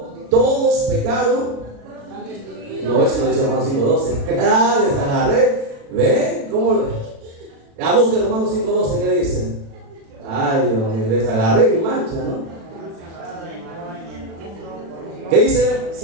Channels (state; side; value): late; left; 36 ms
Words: todos pecaron. No, eso no dice Romanos 5:12. Ah, les agarré. ¿Ven? ¿Cómo? A busquen Romanos 5:12, ¿qué dicen? Ay, Dios mío, les agarré y mancha, ¿no? ¿Qué dice,